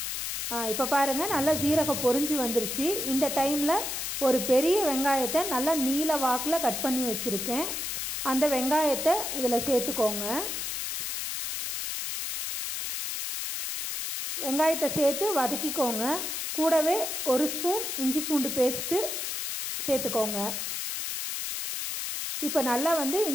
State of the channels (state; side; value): noise; left; hiss, 3 dB below the sound